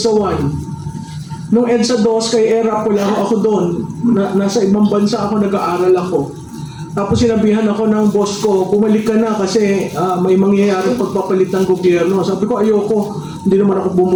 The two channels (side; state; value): both; identical; correlation 1.00